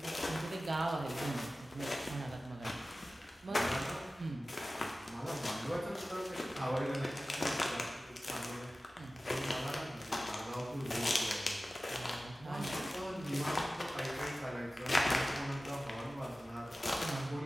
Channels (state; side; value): normal; both; correlation 0.96